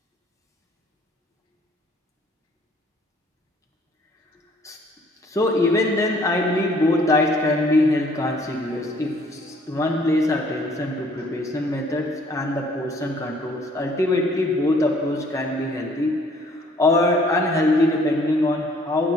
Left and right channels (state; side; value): normal; both; correlation 0.59